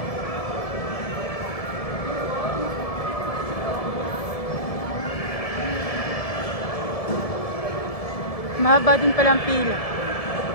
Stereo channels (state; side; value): late; right; 1.7 ms